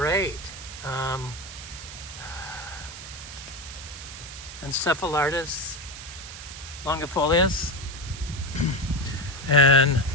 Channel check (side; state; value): right; noise; hiss, 12 dB below the sound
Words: Encephalitis longifolius and